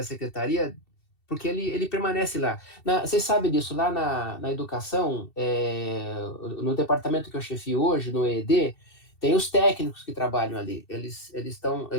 secretaria, porque ele permanece lá. Vocês sabem disso, lá na educação, no departamento que eu chefio hoje, no EED, tem os técnicos que trabalham ali. Eles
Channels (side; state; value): right; late; 2.7 ms